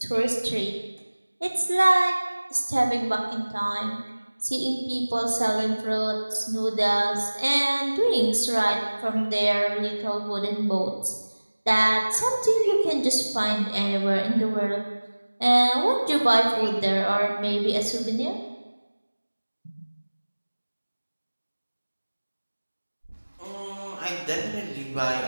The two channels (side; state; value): both; inverted; correlation -1.00